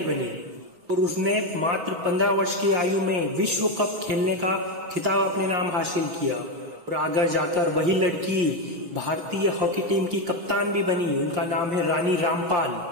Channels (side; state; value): left; late; 6.1 ms